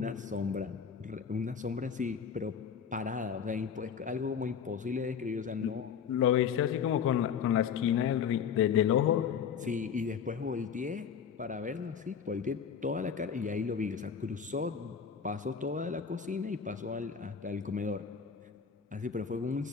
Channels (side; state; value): right; quieter; 7.1 dB